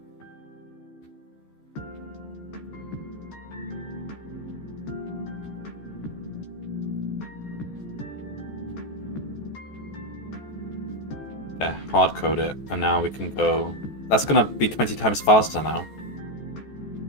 Yeah, hard code it, and now we can go... That's gonna be 20 times faster now.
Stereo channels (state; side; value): late; right; 14 ms